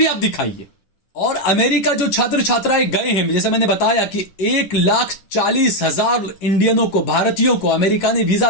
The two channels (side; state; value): right; late; 11 ms